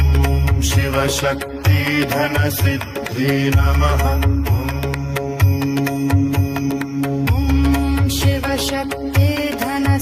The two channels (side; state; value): both; identical; correlation 1.00